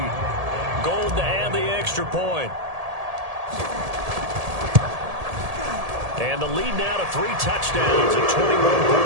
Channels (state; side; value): late; left; 1.7 ms